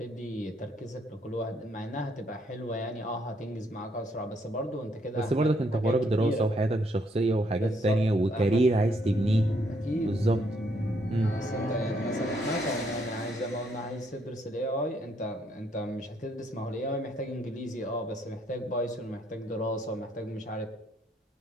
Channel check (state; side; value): normal; both; correlation 0.71